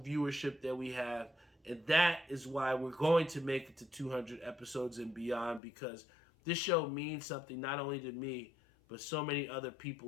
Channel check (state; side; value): drops out; right; at 5.6 s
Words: that we have. And that is why we're going to make it to 200 episodes and beyond, because this show means something not only to me, but so many other